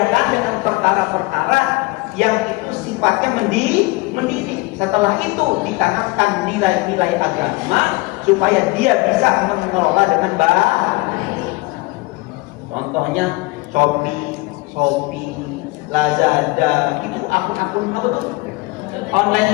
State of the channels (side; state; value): right; quieter; 23.3 dB